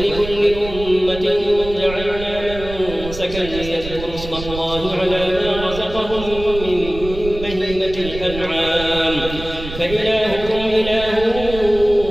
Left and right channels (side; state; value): right; noise; rumble, 11 dB below the sound